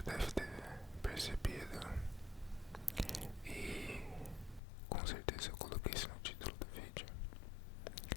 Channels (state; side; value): drops out; right; at 4.6 s